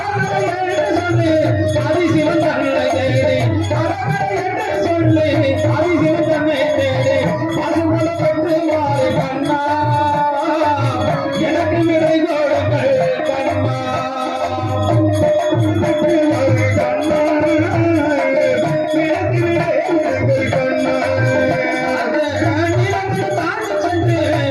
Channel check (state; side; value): identical; both; correlation 1.00